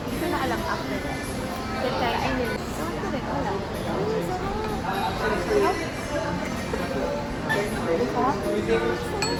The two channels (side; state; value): both; identical; correlation 1.00